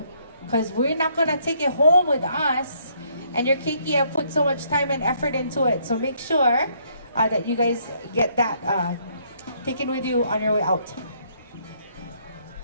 because we're not going to take it home with us. And your keiki have put so much time and effort into it. So make sure that you guys get that taken with you on your way out.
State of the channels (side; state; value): both; inverted; correlation -0.68